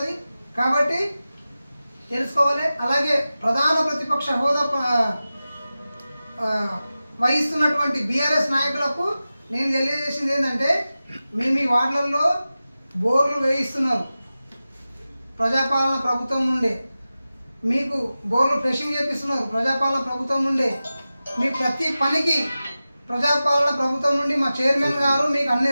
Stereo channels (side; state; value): both; inverted; correlation -0.95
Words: కాబట్టి తెలుసుకోవాలి. అలాగే ప్రధాన ప్రతిపక్ష హోదా వహిస్తున్నటువంటి బీఆర్ఎస్ నాయకులకు నేను తెలియజేసింది ఏంటంటే, మీ వార్డులలో బోర్లు వేయిస్తున్నారు ప్రజాపాలన ప్రభుత్వం నుండే, మీకు బోర్లు ఫ్రెషింగ్ చేపిస్తున్నారు ప్రజాపాలన ప్రభుత్వం నుండే, మీ ప్రతి పనికి ప్రజాపాలన ప్రభుత్వం నుండి మా చైర్మన్ గారు మీకు అన్ని